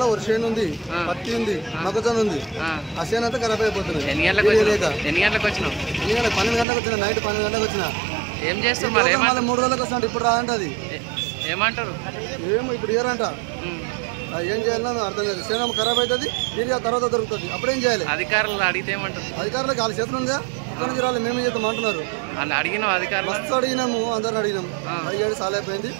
ఒక చేను ఉంది, పత్తి ఉంది, మొక్కజొన్న ఉంది. ఆ చేను అంతా ఖరాబ్ అయిపోతుంది. ఎన్ని గంటలకు వచ్చినావు? 12 గంటలకు వచ్చిన. నైట్ 12 గంటలకు వచ్చిన. ఏం చేస్తావు మరి? 3 రోజులకు వస్తాను. ఇప్పుడు రాదంట. అది ఏమంటారు? ఏమో ఇప్పుడు ఇయరంట. ఏం చేయాలన్నా అర్థం లేదు. సేన ఖరాబ్ అవుతుంది. యూరియా తర్వాత దొరుకుతుంది. అప్పుడేం చేయాలి? అధికారులు అడిగితే ఏమంటారు? అధికారులకు వాళ్ళ చేతులు ఉందా? అక్కడ నుంచి రాలి మేమే చేద్దాం అంటున్నారు. అడిగినాం అధికారులు. మస్తు అడిగినాము, అందరిని అడిగినాం. అడిగాడు చాలా అయిపోయింది.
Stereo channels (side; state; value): left; drops out; at 6.7 s